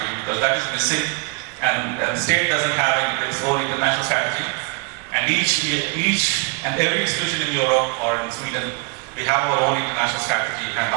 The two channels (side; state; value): left; quieter; 32.4 dB